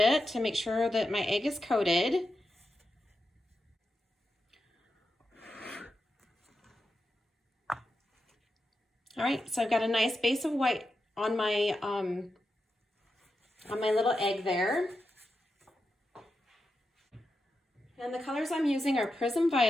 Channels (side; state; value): both; normal; correlation 0.89